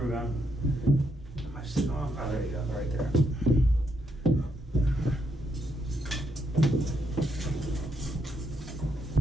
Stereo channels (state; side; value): normal; both; correlation 0.78